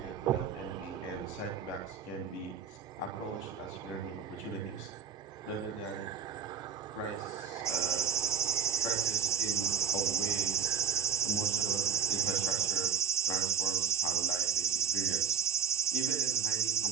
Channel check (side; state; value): left; quieter; 7.4 dB